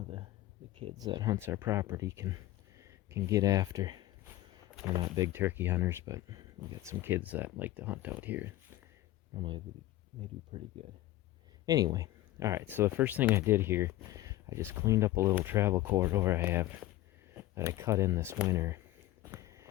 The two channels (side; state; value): right; quieter; 15.8 dB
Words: the kids that hunts our property can get after. We're not big turkey hunters, but we got some kids that like to hunt out here. Normally they do pretty good. Anyway, all right, so the first thing I did here, I just cleaned up a little travel corridor I have that I cut in this winter.